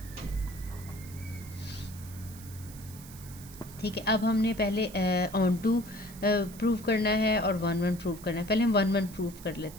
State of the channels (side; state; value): right; noise; hiss, 18 dB below the sound